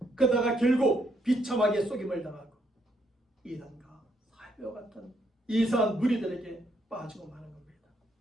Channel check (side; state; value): both; normal; correlation 0.73